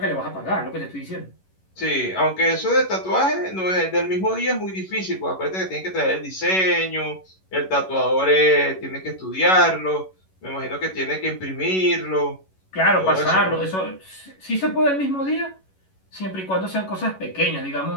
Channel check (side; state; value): right; late; 11 ms